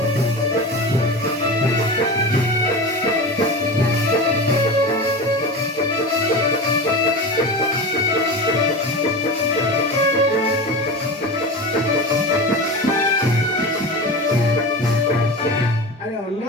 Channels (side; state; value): both; normal; correlation 0.27